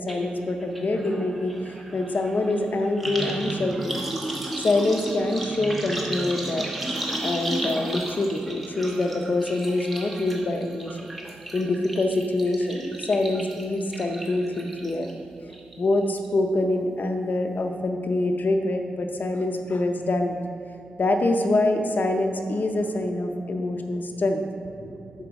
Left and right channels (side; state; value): right; noise; hum, 27 dB below the sound